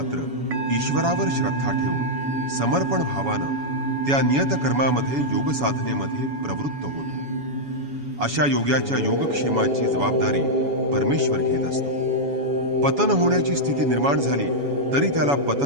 ईश्वरावर श्रद्धा ठेवून समर्पण भावानं त्या नियत कर्मामध्ये योग साधनेमध्ये प्रवृत्त होतो. अशा योग्याच्या योगक्षेमाची जबाबदारी परमेश्वर घेत असतो. पतन होण्याची स्थिती निर्माण झाली तरी त्याला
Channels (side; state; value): left; late; 7.1 ms